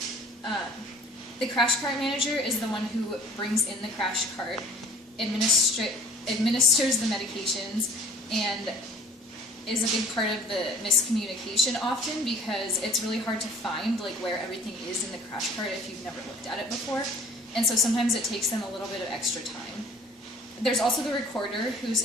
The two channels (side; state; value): both; normal; correlation 0.50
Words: The crash cart manager is the one who brings in the crash cart, administers the medications, and is a big part of the miscommunication often because it's really hard to find like where everything is in the crash cart if you've never looked at it before, and so sometimes it takes them a little bit of extra time. There's also the recorder who's